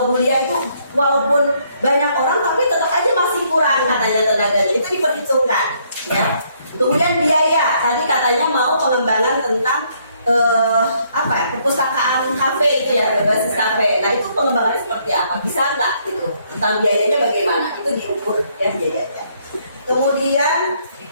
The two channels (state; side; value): inverted; both; correlation -0.69